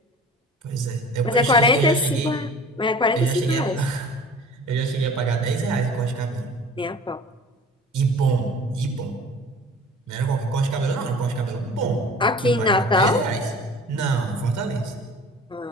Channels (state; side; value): normal; both; correlation 0.44